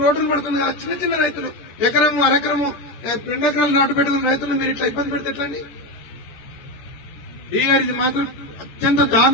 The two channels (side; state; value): right; late; 14 ms